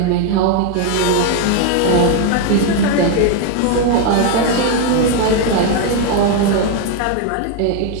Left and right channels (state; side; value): different; both; correlation 0.01